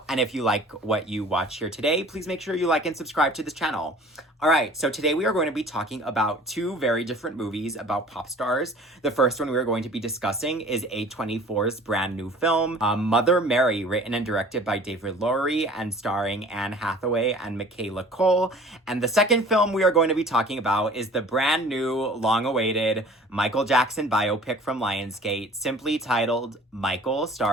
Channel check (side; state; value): both; normal; correlation 0.48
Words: And if you like what you watch here today, please make sure you like and subscribe to this channel. All right, so today we are going to be talking about two very different movies about pop stars. The first one we are going to be discussing is A24's brand new film, Mother Mary, written and directed by David Lowery and starring Anne Hathaway and Michaela Coel. And the second film we are going to be talking about is the brand new, long-awaited Michael Jackson biopic from Lionsgate, simply titled Michael,